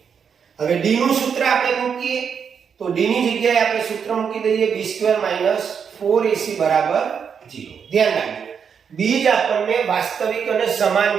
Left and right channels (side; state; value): left; quieter; 6.9 dB